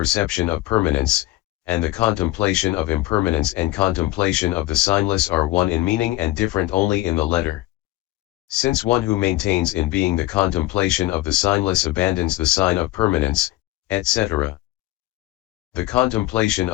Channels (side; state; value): right; quieter; 17.0 dB